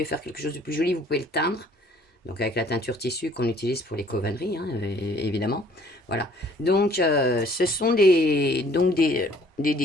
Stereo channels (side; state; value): both; normal; correlation 0.58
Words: faire quelque chose de plus joli, vous pouvez le teindre. Donc, avec la teinture tissu qu'on utilise pour les covanneries, hein, évidemment. Voilà. Donc, ce sont des